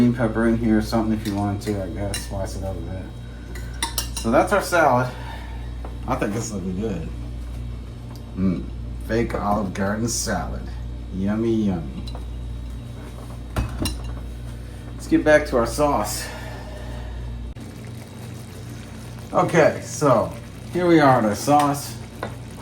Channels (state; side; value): identical; both; correlation 1.00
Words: pepper in here or something if you want to, I guess. Slice it up a bit. So that's our salad. I think this looking good. Fake Olive Garden salad. Yummy, yummy. Let's get back to our sauce. Okay, so here we are at our sauce.